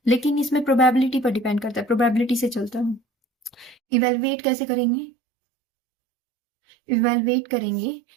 लेकिन इसमें प्रोबेबिलिटी पर डिपेंड करता है, प्रोबेबिलिटी से चलता है। इवेलुएट कैसे करेंगे? इवेलुएट करेंगे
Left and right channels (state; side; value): drops out; left; at 3.8 s